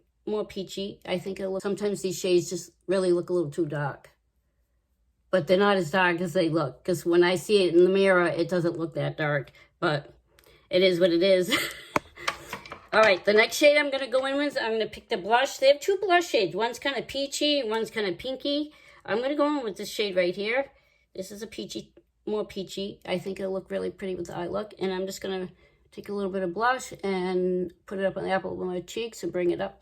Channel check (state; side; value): identical; both; correlation 1.00